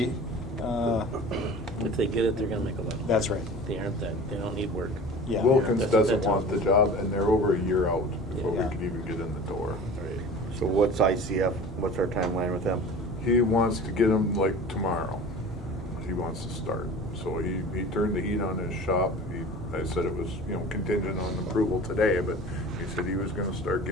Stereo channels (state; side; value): normal; both; correlation 0.39